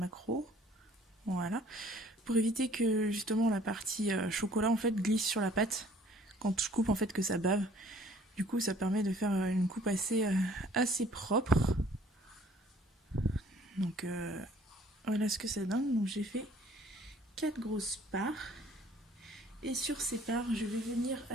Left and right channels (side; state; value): both; normal; correlation 0.56